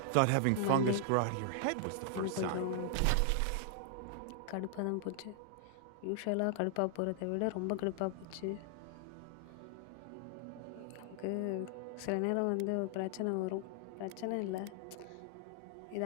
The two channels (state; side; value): different; both; correlation 0.00